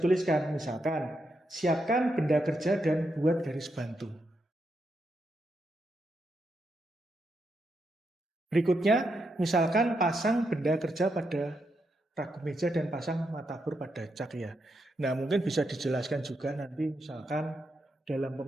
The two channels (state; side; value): normal; both; correlation 0.82